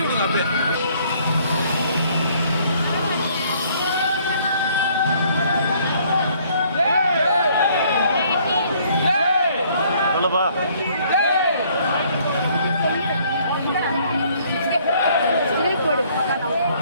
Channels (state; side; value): inverted; both; correlation -0.63